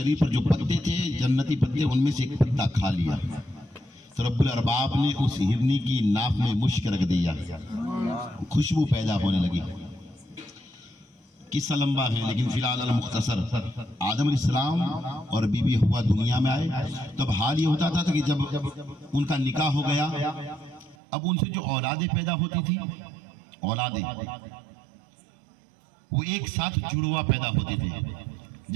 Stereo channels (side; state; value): left; drops out; at 21.0 s